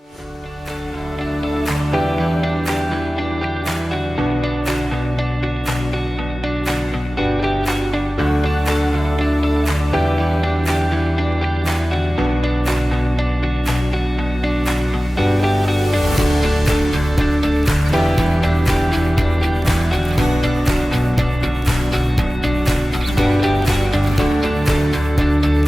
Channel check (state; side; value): normal; both; correlation 0.96